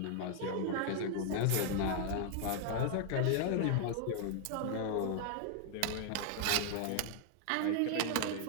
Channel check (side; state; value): both; different; correlation 0.00